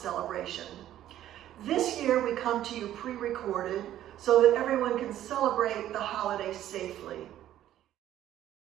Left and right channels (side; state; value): left; quieter; 12.4 dB